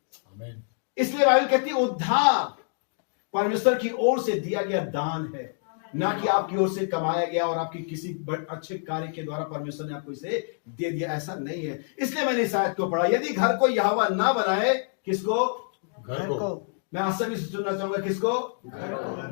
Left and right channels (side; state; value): right; silent; digital silence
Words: आमीन। इसलिए बाइबल कहती है उद्धार परमेश्वर की ओर से दिया गया दान है, ना कि आपकी ओर से कमाया गया और आपकी किसी अच्छे कार्य के द्वारा परमेश्वर ने आपको इसे दे दिया, ऐसा नहीं है। इसलिए मैंने इस आयत को पढ़ा, यदि घर को यहोवा ना बनाए, किसको? घर को। मैं आज सभी से सुनना चाहूंगा, किसको?